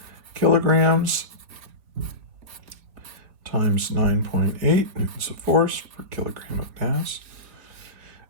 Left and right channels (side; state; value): left; late; 4.3 ms